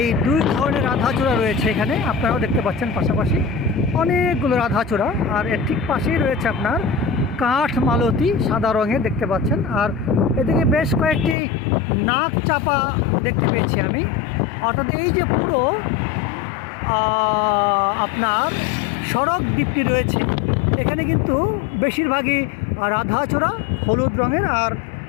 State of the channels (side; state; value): right; drops out; at 11.4 s